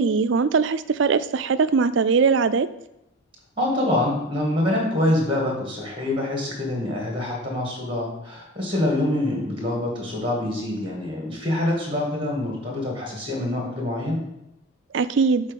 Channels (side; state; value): both; normal; correlation 0.29